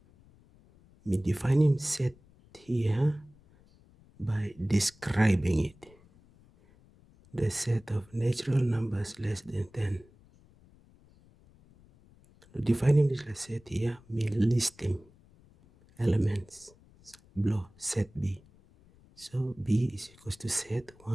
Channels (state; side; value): noise; left; rumble, 28 dB below the sound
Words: we defining set here by describing it. The set of natural numbers less than 10. Defining this set here means listing elements below set B. So B is equals to set